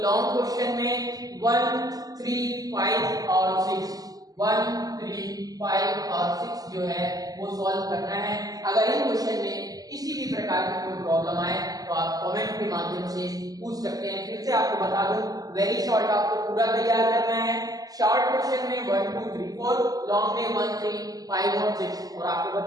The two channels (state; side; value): late; left; 0.18 ms